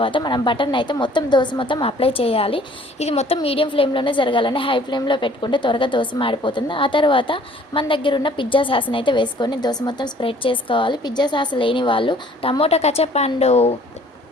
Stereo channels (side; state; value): both; normal; correlation 0.55